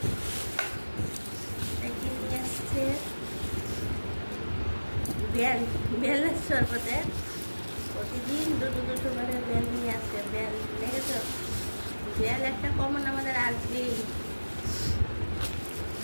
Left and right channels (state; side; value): inverted; both; correlation -1.00